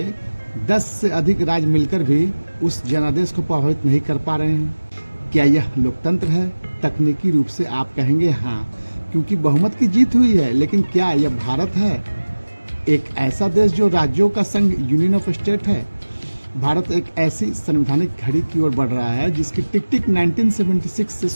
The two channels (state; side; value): inverted; both; correlation -1.00